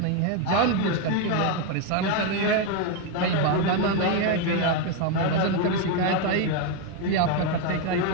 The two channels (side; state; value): both; different; correlation 0.02